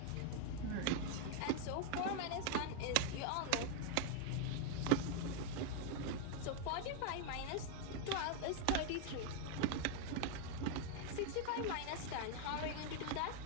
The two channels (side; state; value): both; different; correlation 0.00